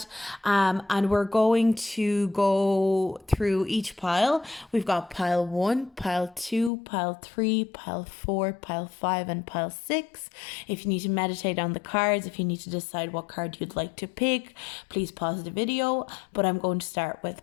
and we're going to go through each pile. We've got pile 1, pile 2, pile 3, pile 4, pile 5, and pile 6. If you need to meditate on the cards, if you need to decide what card you'd like to pick, please pause the video. But I'm going to start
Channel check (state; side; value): drops out; right; at 6.7 s